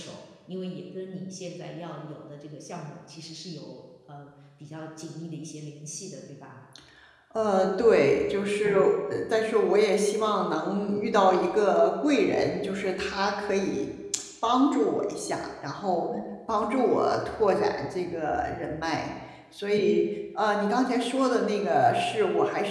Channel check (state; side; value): identical; both; correlation 1.00